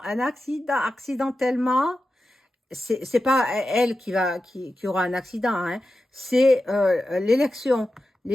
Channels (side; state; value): both; normal; correlation 0.91